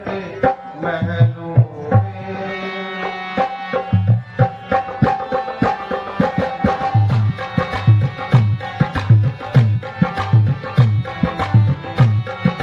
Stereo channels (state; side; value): identical; both; correlation 1.00